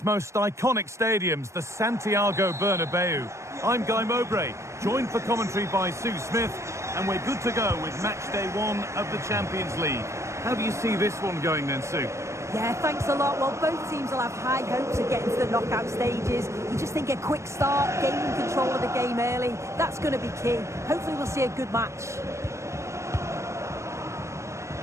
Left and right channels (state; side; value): late; left; 0.14 ms